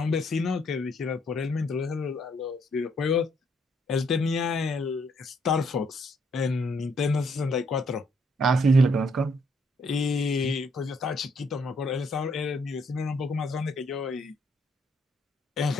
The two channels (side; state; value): both; normal; correlation 0.70